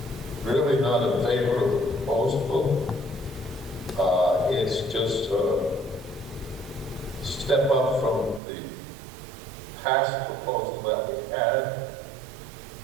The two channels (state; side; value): drops out; left; at 8.4 s